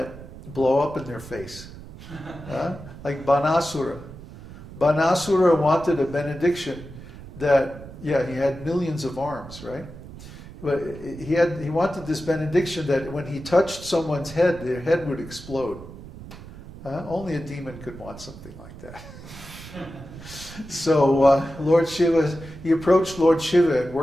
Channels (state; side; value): noise; right; rumble, 15 dB below the sound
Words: blow up in their face. Like Banasura. Banasura wanted a benediction that, he had millions of arms, right? But he wanted this benediction that when he touched someone's head, their head would explode. Only a demon could want something like that. So Lord Shiva, he approached Lord Shiva and